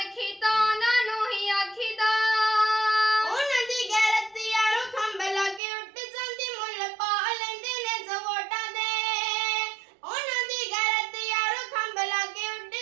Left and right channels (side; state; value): left; drops out; at 5.6 s